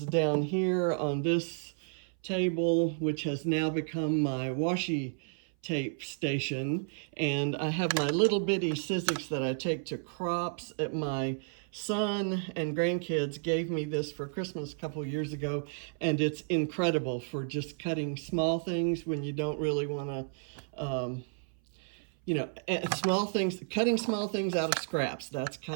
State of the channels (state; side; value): silent; left; 56 dB below the other